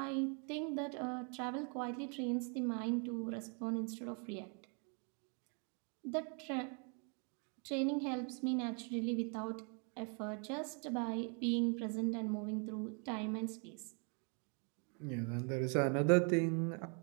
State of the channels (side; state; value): left; quieter; 38.1 dB